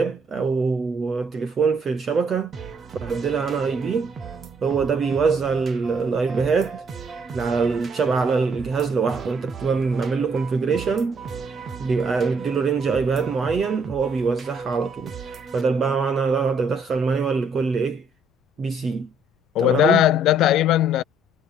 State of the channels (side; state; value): both; normal; correlation 0.66